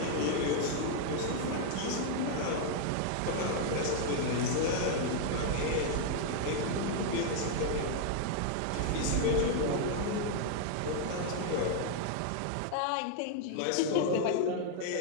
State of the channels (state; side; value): different; both; correlation 0.00